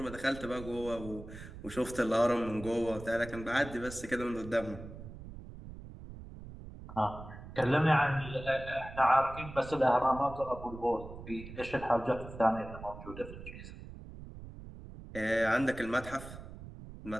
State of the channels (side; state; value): right; noise; rumble, 13 dB below the sound